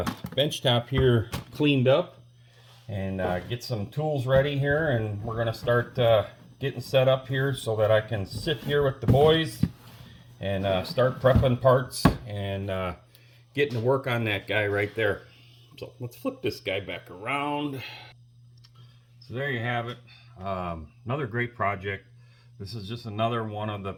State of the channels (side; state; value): both; identical; correlation 1.00